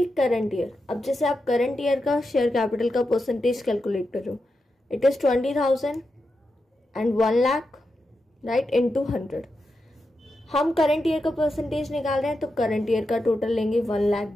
करंट ईयर, अब जैसे आप करंट ईयर का शेयर कैपिटल का परसेंटेज कैलकुलेट कर रहे हो, it is 20,000 and 1,00,000 right into 100। हम करंट ईयर का परसेंटेज निकाल रहे हैं तो करंट ईयर का टोटल लेंगे 1,00,000,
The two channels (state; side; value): normal; both; correlation 0.88